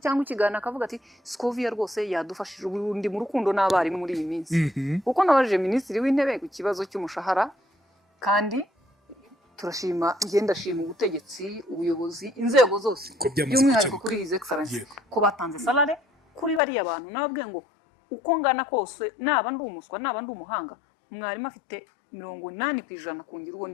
ikiganiro akavuga ati Scovia rwose yadufashije ubundi mu rukundo n'abarimu muri iyi minsi kuko nabajije minisitiri w'intebe ku kibazo cy'umushahara kandi turashima ndashima ubutegetsi ubuyobozi inzego zose by'umwihariko kuri His Excellency ko batanze salary kuri bariya bantu nabwe ngo uko ngana kose naba ndi umuswa naba ndi umuhanga mwarimu afite 80% kungira uwo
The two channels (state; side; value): drops out; right; at 16.6 s